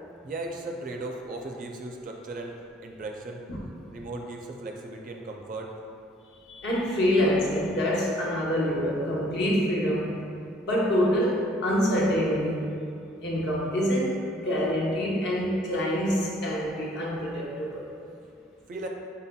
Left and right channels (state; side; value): normal; both; correlation 0.59